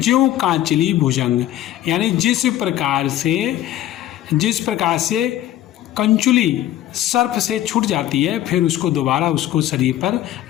कांचली भुजंग, यानी जिस प्रकार से कंचुली सर्प से छूट जाती है, फिर उसको दोबारा उसको शरीर पर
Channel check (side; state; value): right; quieter; 13.2 dB